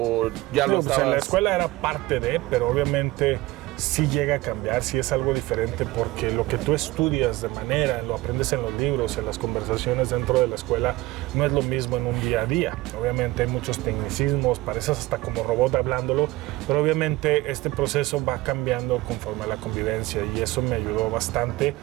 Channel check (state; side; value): quieter; left; 19.6 dB